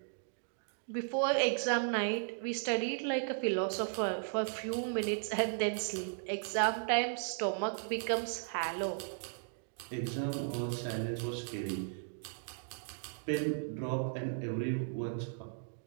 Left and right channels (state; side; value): silent; left; digital silence